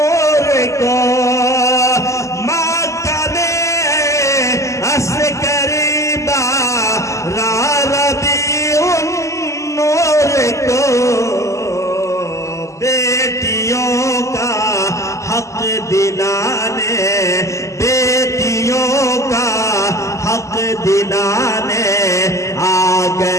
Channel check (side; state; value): right; late; 0.15 ms